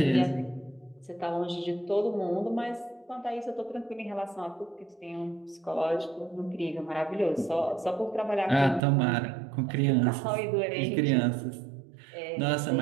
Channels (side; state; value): left; drops out; at 8.8 s